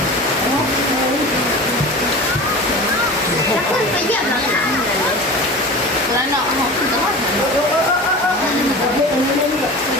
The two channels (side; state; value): both; normal; correlation 0.33